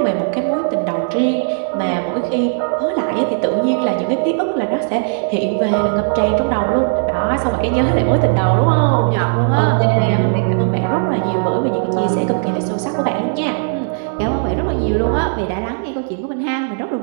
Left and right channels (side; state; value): left; silent; digital silence